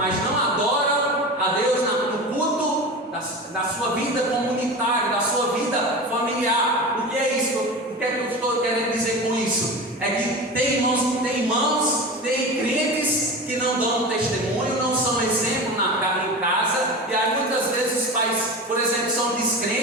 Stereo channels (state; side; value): normal; both; correlation 0.29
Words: não adoram a Deus no culto da sua vida comunitária, da sua vida familiar. O que é isso? O que é que eu estou querendo dizer com isso? É que tem irmãos, tem crentes que não dão testemunho, não são exemplo em casa, e aí muitas vezes os pais, por exemplo, são